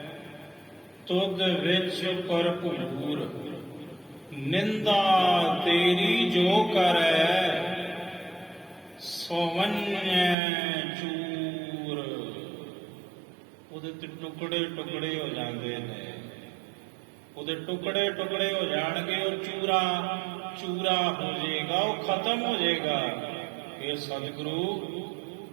ਤੁਧ ਵਿੱਚ ਭਰਪੂਰ। ਨਿੰਦਾ ਤੇਰੀ ਜੋ ਕਰੈ, ਸੋਵੰਨੈ ਚੂਰ। ਉਹਦੇ ਤੇ ਟੁਕੜੇ ਟੁਕੜੇ ਹੋ ਜਾਂਦੇ ਨੇ, ਉਹਦੇ ਟੁਕੜੇ ਟੁਕੜੇ ਹੋ ਜਾਣਗੇ, ਉਹ ਚੂਰਾ ਚੂਰਾ ਹੋ ਜਾਏਗਾ, ਉਹ ਖਤਮ ਹੋ ਜਾਏਗਾ। ਇਹ ਸਤਿਗੁਰੂ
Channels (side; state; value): left; drops out; at 10.4 s